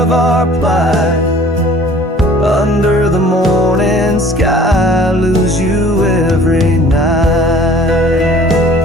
our plight. Under the morning sky, I lose you every night.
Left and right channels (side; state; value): both; normal; correlation 0.51